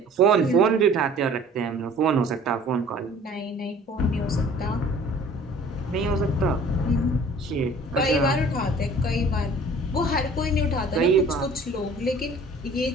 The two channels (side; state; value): both; normal; correlation 0.50